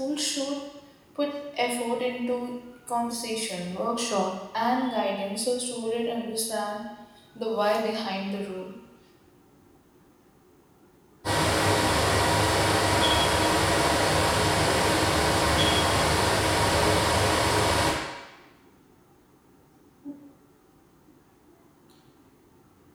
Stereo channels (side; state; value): both; identical; correlation 1.00